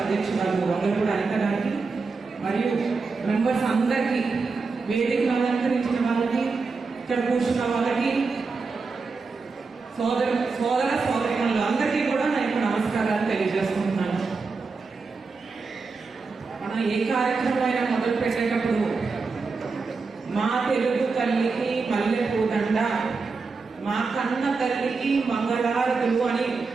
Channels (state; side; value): quieter; left; 4.4 dB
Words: అధ్యక్షురాలు వంగలపూడి అనిత గారికి మరియు మెంబర్స్ అందరికీ, వేదికను అలంకరించిన వాళ్ళకి, ఇక్కడ కూర్చున్న వాళ్ళకి, సోదరులు అందరికీ కూడా నేను నమస్కారాలు తెలియజేసుకుంటున్నాను. మనం ఏ కార్యక్రమం అయినా మొదలు పెట్టేటప్పుడు మా తెలుగు తల్లికి మల్లెపూదండ, మా కన్న తల్లికి మంగళారతులు అని